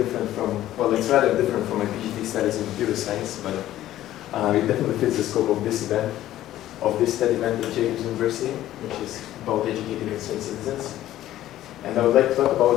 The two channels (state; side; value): quieter; right; 13.7 dB